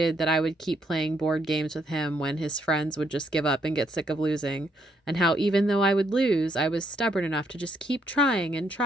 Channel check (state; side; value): normal; both; correlation 0.73